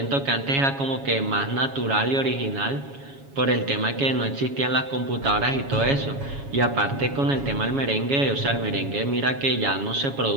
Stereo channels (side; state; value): left; late; 7.2 ms